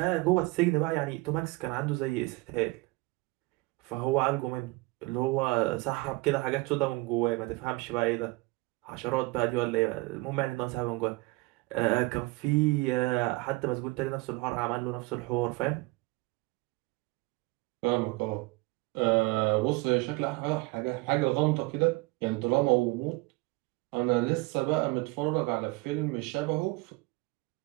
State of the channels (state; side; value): quieter; left; 23.5 dB